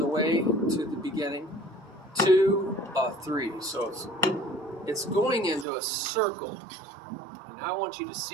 the way to the beginning, 2, 3. So it's going into a circle. And I want you to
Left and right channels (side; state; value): left; drops out; at 5.7 s